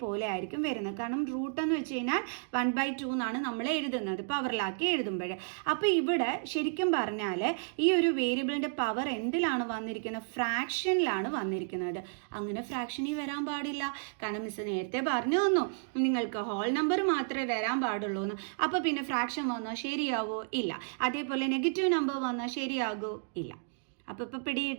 ആയിരിക്കും വരുന്നത്. കാരണം റൂട്ട് എന്ന് വെച്ച് കഴിഞ്ഞാൽ 1/2 എന്നാണ് നമ്മൾ എഴുതുന്നത് പവറിലാക്കി എഴുതുമ്പോൾ. അപ്പോൾ ഇവിടെ ശരിക്കും പറഞ്ഞാൽ ഈ ഒരു വേരിയബിളിൻ്റെ പവർ എന്തിലാണ് വന്നിരിക്കുന്നത്? ഫ്രാക്ഷനിലാണ് വന്നിരിക്കുന്നത്. അങ്ങനെ ഫ്രാക്ഷനിൽ വരാൻ പാടില്ല. കാരണം മിസ് നേരത്തെ പറഞ്ഞു തന്നു നിങ്ങൾക്ക് ഹോൾ നമ്പർ മാത്രമേ വരാൻ പാടുള്ളൂ എന്ന്. അപ്പോൾ പിന്നെ ഫ്രാക്ഷൻ വന്നാൽ ശരിയാവോ? ഇല്ല. അതേപോലെ നെഗറ്റീവ് നമ്പർ വന്നാൽ ശരിയാകോ? ഇല്ല. അപ്പോൾ ഇപ്പോൾ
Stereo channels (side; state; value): left; silent; digital silence